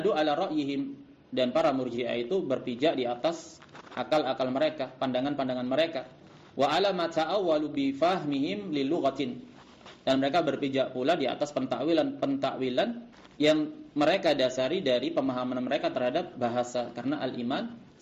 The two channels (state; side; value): identical; both; correlation 1.00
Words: ala ra'yihim, dan para murji'ah itu berpijak di atas akal-akal mereka, pandangan-pandangan mereka. Wa ala ma ta'awwalu bi fahmihim lil lughatin, dan mereka berpijak pula di atas pentakwilan yang mereka dasari dari pemahaman mereka terhadap bahasa. Karena al-iman